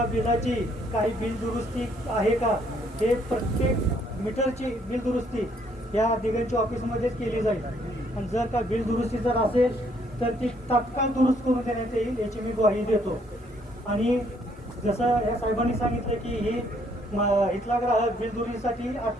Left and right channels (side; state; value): both; normal; correlation 0.67